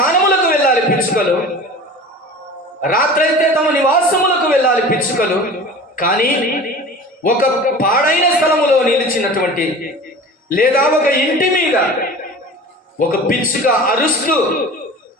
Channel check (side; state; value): both; normal; correlation 0.38